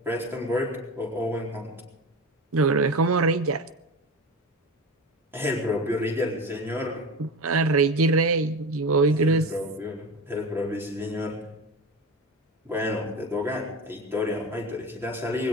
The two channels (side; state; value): both; normal; correlation 0.26